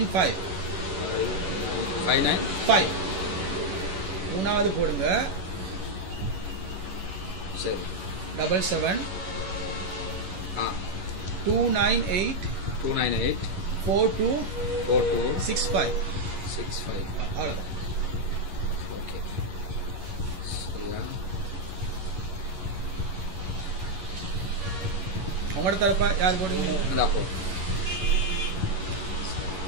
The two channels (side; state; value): left; late; 11 ms